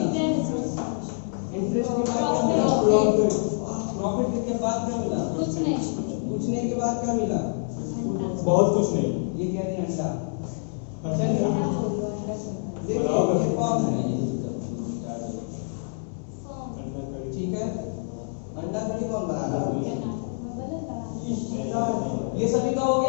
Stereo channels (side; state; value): right; silent; digital silence